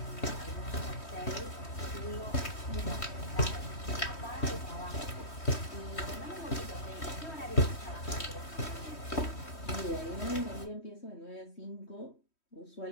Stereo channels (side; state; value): right; late; 3.1 ms